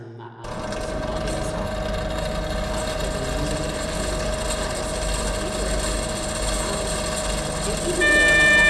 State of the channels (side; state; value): both; identical; correlation 1.00